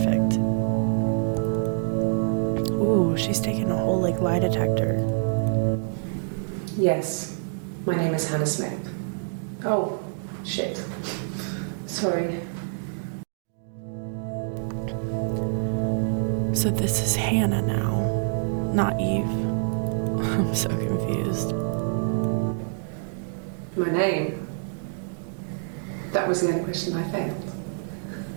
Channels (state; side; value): silent; left; digital silence